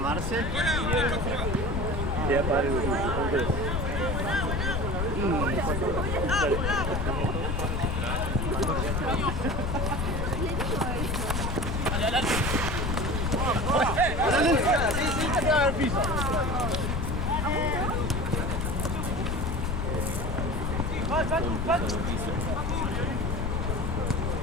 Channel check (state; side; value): noise; left; rumble, 1 dB below the sound